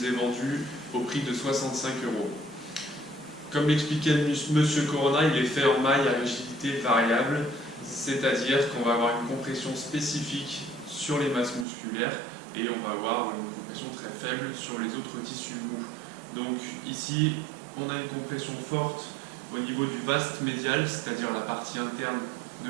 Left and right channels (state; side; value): drops out; left; at 11.7 s